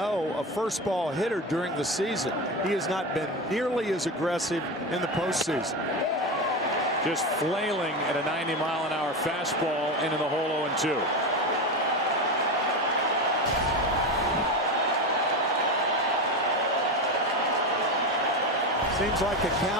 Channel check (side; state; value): both; normal; correlation 0.19